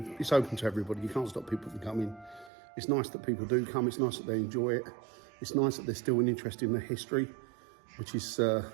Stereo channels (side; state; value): left; drops out; at 2.5 s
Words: do? It's open to everybody. You can't stop people from coming. It's nice that people do come. It's nice that they enjoy it. It's nice that they're still interested in the history, which is